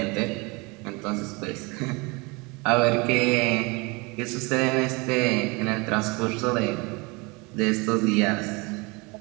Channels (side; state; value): left; quieter; 27.2 dB